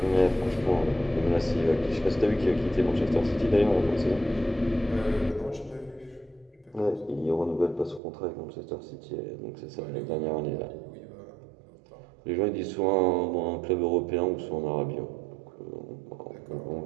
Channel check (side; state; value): left; drops out; at 8.0 s